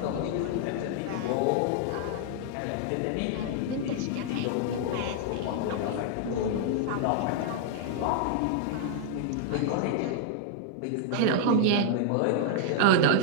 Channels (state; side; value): different; both; correlation -0.01